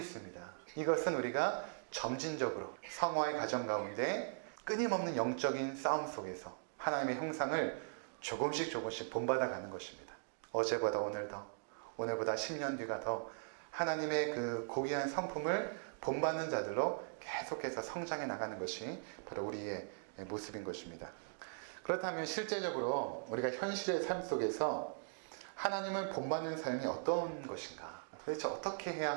이것은 우리가 점진적으로 성화의 과정 가운데 끊임없는 영적인 싸움 속에서 하나님의 형상을 조금씩 본받아 가는 것입니다. 어제보다 오늘 더, 오늘보다 10년 뒤가 더 하나님의 그 고귀한 성품을 본받는 자들로 계속해서 성장해 나가는 것이 바로 우리의 모습인 것입니다. 그렇다면 실제적으로 우리가 현실의 삶 속에서 하나님을 본받는 삶이 어떤 것인가? 도대체 어떻게 해야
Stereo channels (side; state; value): left; silent; digital silence